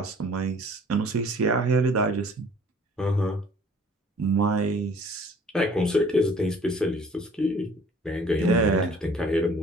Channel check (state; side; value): normal; both; correlation 0.53